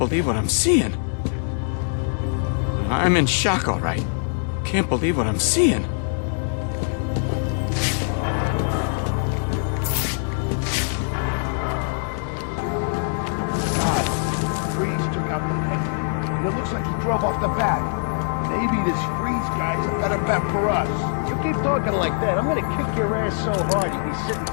what I'm seeing. I'm in shock, all right. Can't believe what I'm seeing. God, Freeze took out the head. And it looks like he drove off the bat. Maybe this Freeze guy's a better bet for us. You keep talking like that, I'm gonna kick your ass so hard you'll be sitting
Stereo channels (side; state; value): right; silent; digital silence